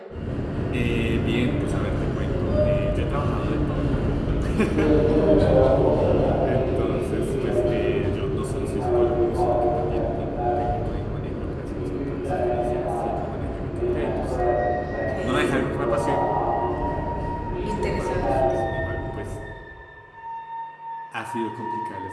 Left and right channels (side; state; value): both; identical; correlation 1.00